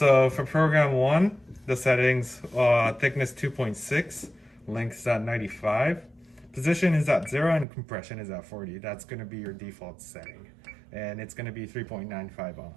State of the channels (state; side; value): drops out; left; at 7.7 s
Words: for program 1, the settings, thickness 2.6, length is at 95. Position is at 0 and compression is at 40. That's going to be your default setting. And it's going to be